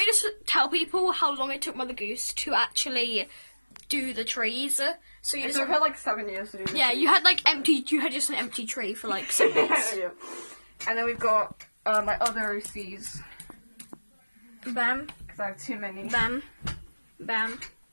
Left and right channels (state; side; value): inverted; both; correlation -1.00